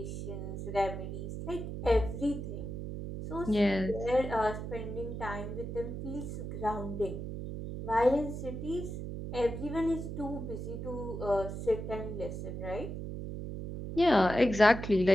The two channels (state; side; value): noise; right; hum, 6 dB below the sound